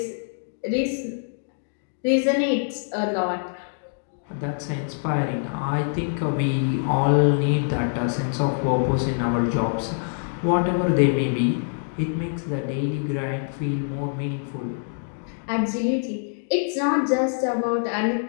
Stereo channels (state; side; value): silent; right; digital silence